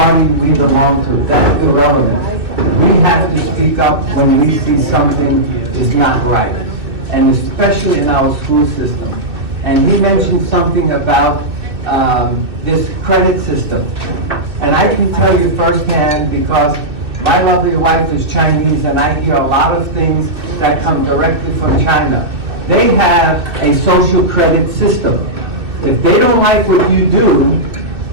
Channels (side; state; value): left; late; 2.6 ms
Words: we belong to. That's irrelevant. We have to speak up when we see something is not right, and especially in our school system. And he mentioned something about this credit system. And I can tell you firsthand, because my lovely wife is Chinese, and I hear a lot of things that come directly from China. They have a social credit system. If they don't like what you do,